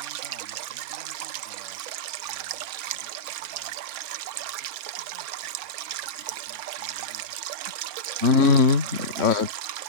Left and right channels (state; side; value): late; left; 4.3 ms